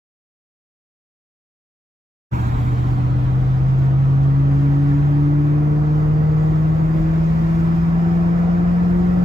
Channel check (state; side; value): normal; both; correlation 0.87